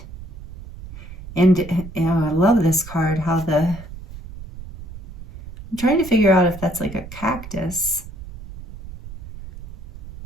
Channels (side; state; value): right; noise; rumble, 14 dB below the sound